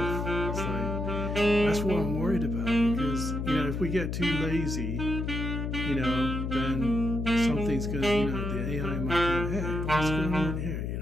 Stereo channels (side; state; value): left; noise; hum, 3 dB below the sound